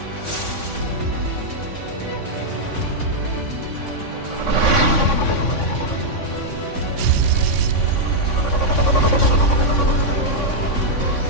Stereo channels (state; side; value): late; right; 3.6 ms